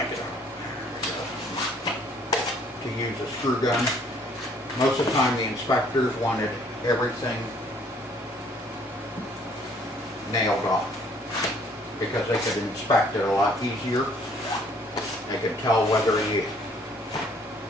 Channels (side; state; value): both; normal; correlation 0.61